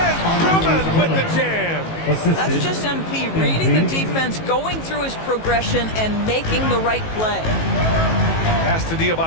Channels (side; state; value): right; late; 18 ms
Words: Drummond with the jam. That's just MP reading the defense, going through his progression, and making the right play. Pass to